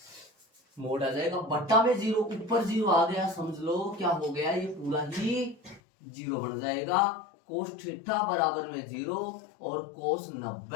मोड आ जाएगा। बट्टा में 0, ऊपर 0 आ गया, समझ लो क्या हो गया, ये पूरा ही 0 बन जाएगा। कोस थीटा बराबर में 0 और कोस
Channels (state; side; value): drops out; right; at 5.8 s